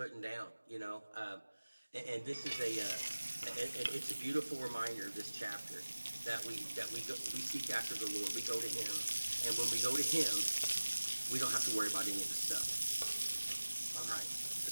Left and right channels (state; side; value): inverted; both; correlation -1.00